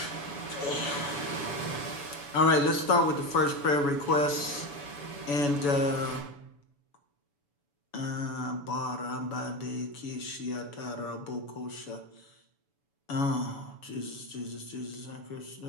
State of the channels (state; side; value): late; right; 7.0 ms